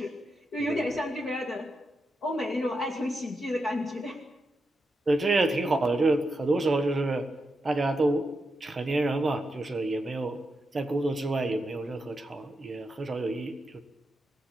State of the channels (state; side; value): normal; both; correlation 0.86